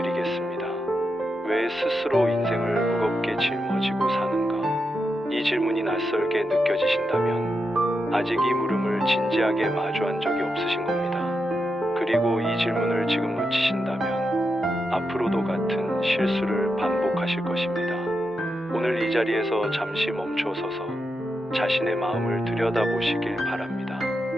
왜 스스로 인생을 무겁게 짊어지고 사는가? 이 질문이 낯설게 느껴지신다면 아직 이 물음을 진지하게 마주한 적이 없으신 겁니다. 그리고 이 질문을 지금 놓치신다면 앞으로도 같은 실수를 반복하실 것입니다. 오늘 이 자리에서 잠시 멈춰서서 자신의 마음을 들여다보시길 바랍니다.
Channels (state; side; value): normal; both; correlation 0.86